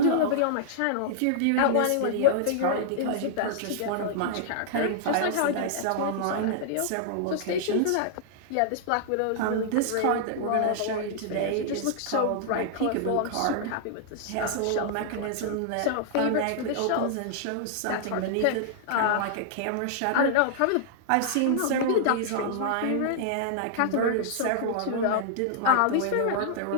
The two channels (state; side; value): different; both; correlation -0.01